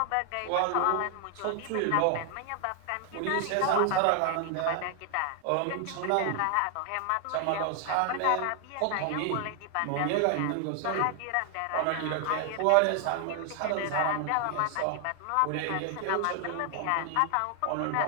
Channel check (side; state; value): both; different; correlation 0.00